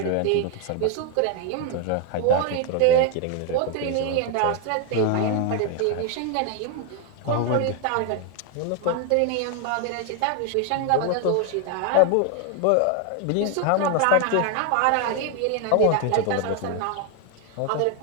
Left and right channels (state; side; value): different; both; correlation 0.01